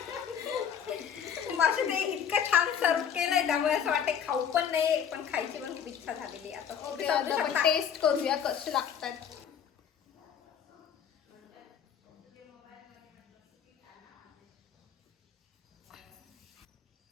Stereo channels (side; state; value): right; quieter; 8.1 dB